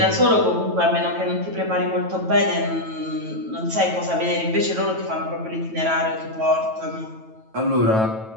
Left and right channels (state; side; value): late; left; 9.1 ms